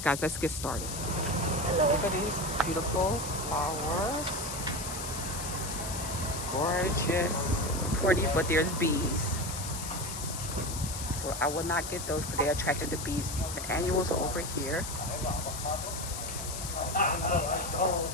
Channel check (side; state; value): left; noise; hiss, 7 dB below the sound